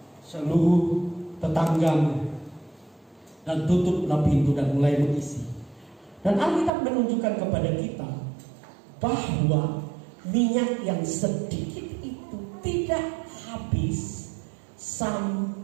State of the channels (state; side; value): drops out; left; at 6.7 s